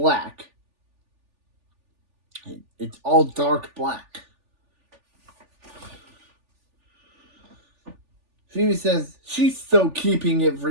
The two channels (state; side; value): late; left; 3.4 ms